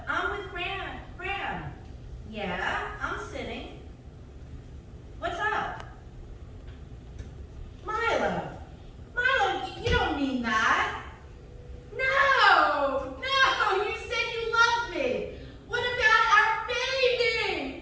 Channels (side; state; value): both; identical; correlation 1.00